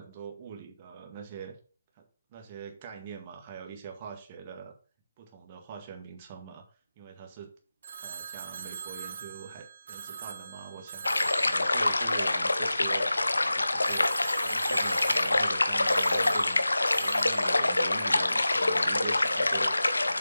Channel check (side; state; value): both; inverted; correlation -0.95